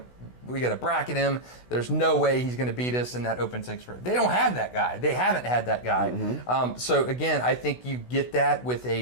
bracket him. There's no way he's going to beat us in that open six. They don't have that guy. They haven't had that guy. So again, I think you get that with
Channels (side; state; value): right; late; 16 ms